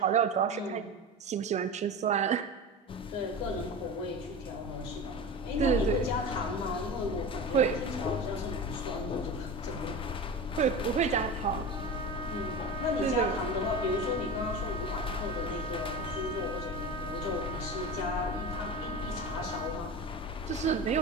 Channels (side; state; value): both; normal; correlation 0.29